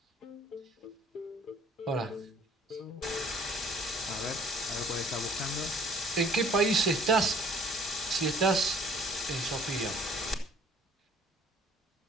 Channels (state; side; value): normal; both; correlation 0.55